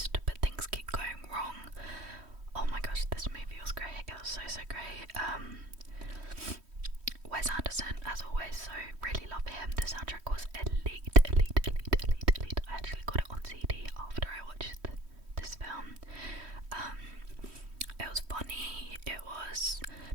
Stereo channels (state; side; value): late; left; 3.1 ms